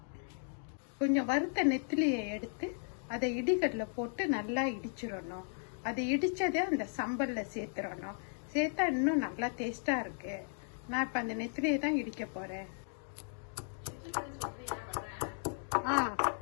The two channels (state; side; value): silent; right; 54 dB below the other